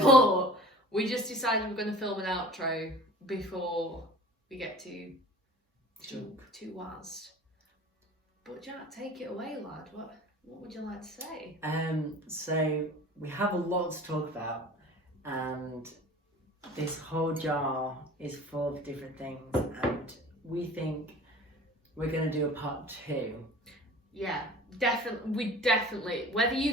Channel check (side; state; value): both; normal; correlation 0.43